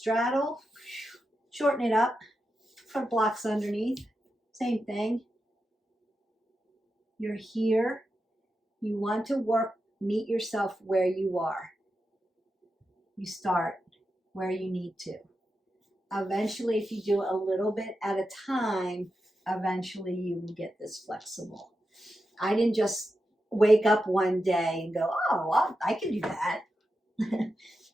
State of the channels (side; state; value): both; normal; correlation 0.89